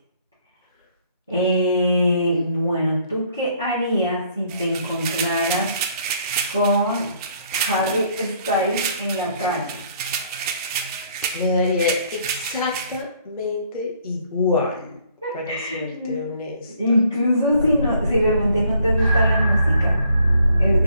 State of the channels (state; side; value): inverted; both; correlation -0.64